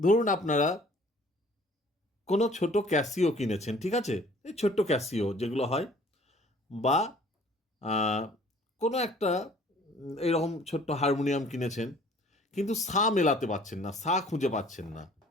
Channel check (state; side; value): normal; both; correlation 0.54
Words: আপনারা কোনো ছোট ক্যাসিও কিনেছেন, ঠিক আছে? এই ছোট্ট ক্যাসিও যেগুলো হয়, বা আহ, কোনো একটা এইরকম ছোট্ট হারমোনিয়াম কিনেছেন, কিন্তু সা মেলাতে পারছেন না, সা খুঁজে পাচ্ছেন না,